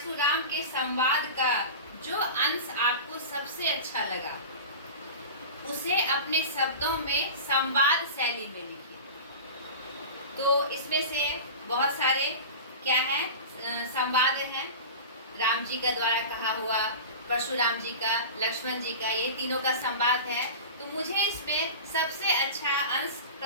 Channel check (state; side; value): inverted; both; correlation -0.31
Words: के संवाद का जो अंश आपको सबसे अच्छा लगा उसे अपने शब्दों में संवाद शैली में लिखिए। तो इसमें से बहुत सारे क्या है? संवाद हैं। राम जी का द्वारा कहा हुआ, परशुराम जी का, लक्ष्मण जी का, ये तीनों का संवाद है। तो मुझे इसमें सबसे अच्छा अंश